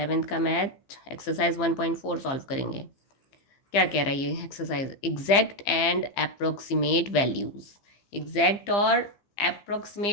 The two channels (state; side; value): late; right; 15 ms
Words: का मैथ एक्सरसाइज 1.4 सॉल्व करेंगे। क्या कह रहा है ये exercise? Exact and approximate values. Exact और